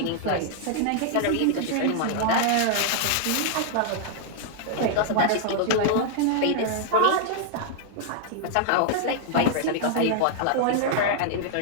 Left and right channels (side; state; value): both; different; correlation -0.01